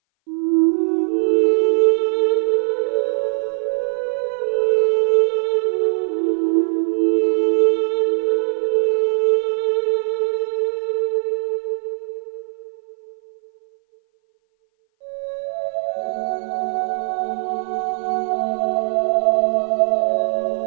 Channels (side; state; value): left; silent; 59 dB below the other